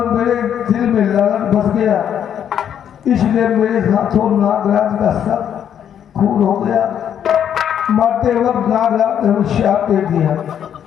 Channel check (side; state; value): right; quieter; 9.2 dB